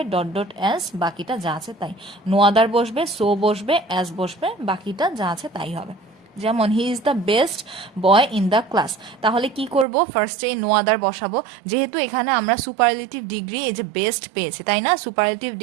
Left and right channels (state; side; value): drops out; left; at 9.9 s